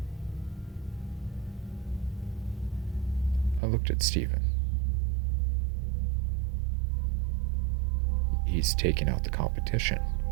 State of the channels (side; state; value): left; drops out; at 3.6 s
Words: I looked at Steven. He's taking out the competition.